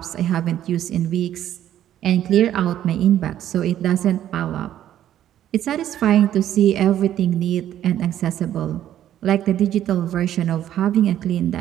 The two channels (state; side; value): quieter; left; 11.5 dB